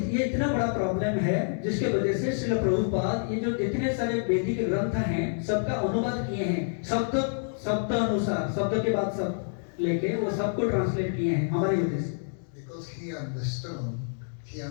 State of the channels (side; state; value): right; silent; digital silence